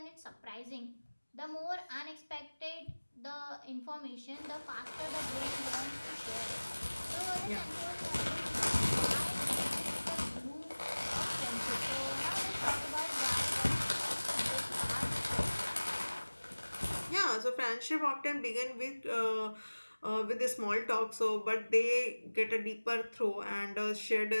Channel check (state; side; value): inverted; both; correlation -1.00